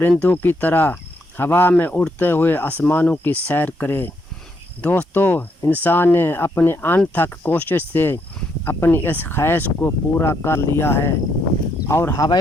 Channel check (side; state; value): both; normal; correlation 0.75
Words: کی طرح ہوا میں اڑتے ہوئے آسمانوں کی سیر کرے۔ دوستو، انسان نے اپنی انتھک کوشش سے اپنی اس خواہش کو پورا کر لیا ہے اور